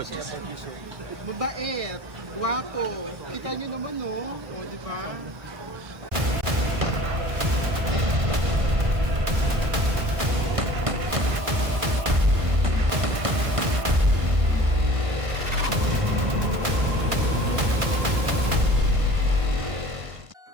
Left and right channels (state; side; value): late; left; 1.5 ms